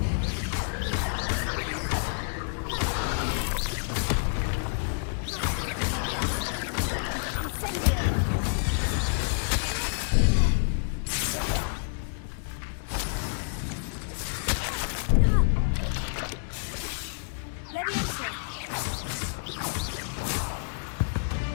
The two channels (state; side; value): silent; right; digital silence